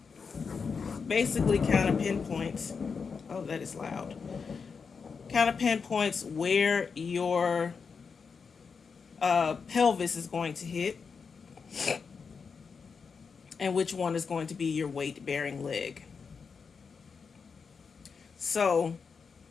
basically kind of pinpoints, oh, that is loud, kind of pinpoints where your pelvis is going to hit and which one is going to be your weight-bearing leg. So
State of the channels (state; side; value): quieter; right; 5.5 dB